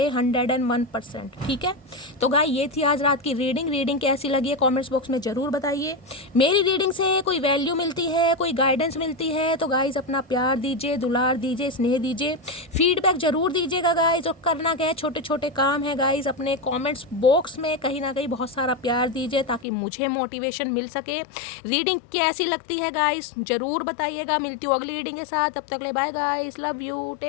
101%। ठीक है, तो गाय ये थी आज रात की रीडिंग कैसी लगी है कमेंट्स बॉक्स में ज़रूर बताइए। मेरी रीडिंग से कोई वैल्यू मिलती है, कोई गाइडेंस मिलती है तो गाइज अपना प्यार दीजिए, दुलार दीजिए, स्नेह दीजिए, फीडबैक ज़रूर दीजिएगा गाइज। और करना क्या है, छोटे छोटे काम है गाइज, अपने कॉमेंट्स बॉक्स में कहीं ना कहीं बहुत सारा प्यार दीजिए ताकि मुझे मोटिवेशन मिल सके। रीडिंग कैसी लगती है गाइज ज़रूर बताइएगा। मिलती हूँ अगली रीडिंग के साथ, तब तक ले bye guys, love you,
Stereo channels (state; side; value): drops out; right; at 19.7 s